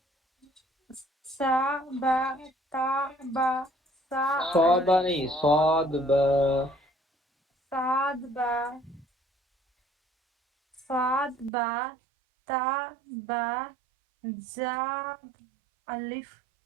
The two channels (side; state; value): left; drops out; at 11.5 s